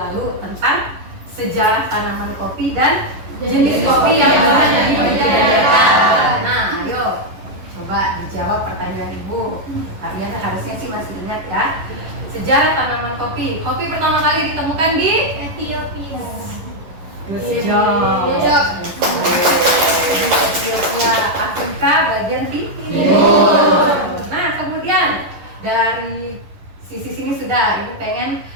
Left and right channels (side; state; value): left; late; 11 ms